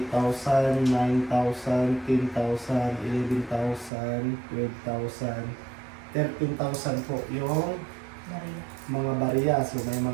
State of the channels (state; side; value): drops out; left; at 3.9 s